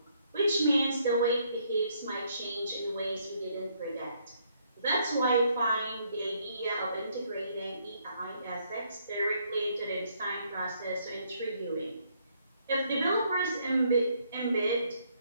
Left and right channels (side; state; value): both; inverted; correlation -0.70